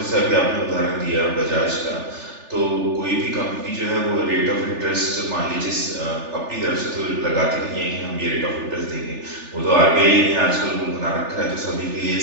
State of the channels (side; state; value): left; late; 3.4 ms